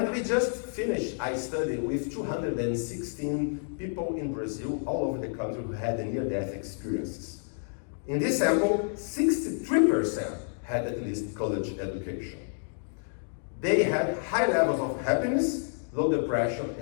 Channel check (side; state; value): right; silent; digital silence